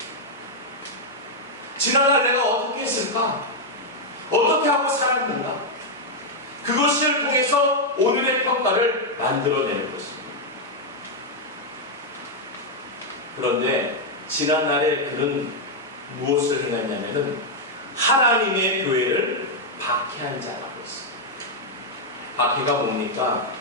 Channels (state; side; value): normal; both; correlation -0.01